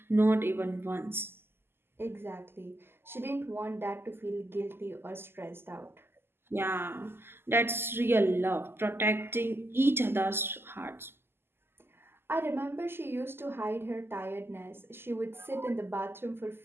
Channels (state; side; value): late; left; 0.11 ms